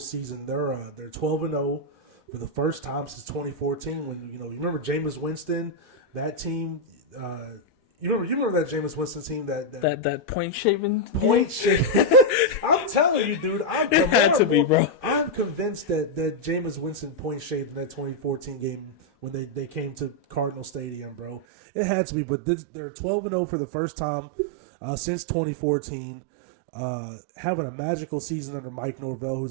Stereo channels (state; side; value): drops out; left; at 21.4 s